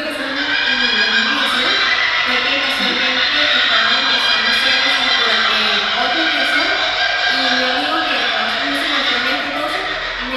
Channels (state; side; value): identical; both; correlation 1.00